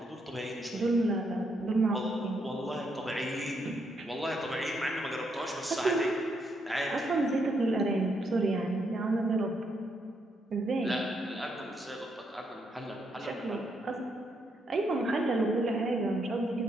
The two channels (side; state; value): both; normal; correlation 0.77